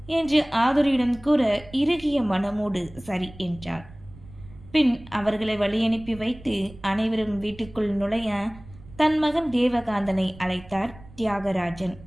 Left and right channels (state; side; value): noise; right; rumble, 20 dB below the sound